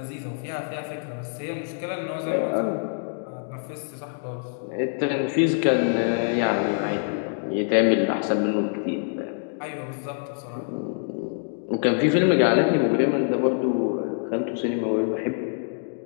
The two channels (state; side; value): silent; right; digital silence